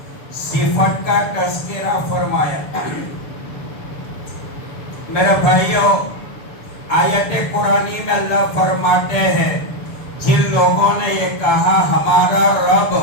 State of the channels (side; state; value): right; late; 6.9 ms